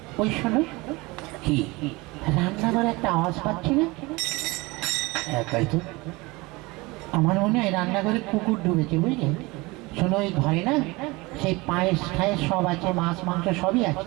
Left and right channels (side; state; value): left; quieter; 23.4 dB